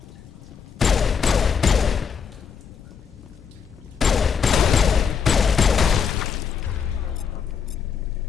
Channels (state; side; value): quieter; right; 6.7 dB